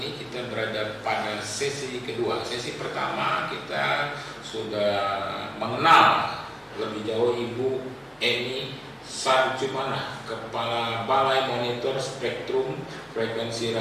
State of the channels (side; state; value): both; identical; correlation 1.00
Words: Kita berada pada sesi kedua. Sesi pertama kita sudah mengenal lebih jauh Ibu Eni Sarjumana, Kepala Balai Monitor Spektrum Frekuensi